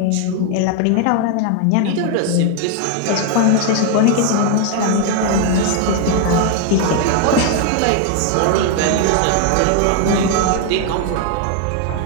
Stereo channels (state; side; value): different; both; correlation 0.00